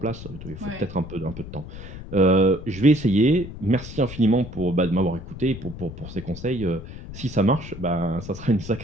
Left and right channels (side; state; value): left; noise; rumble, 12 dB below the sound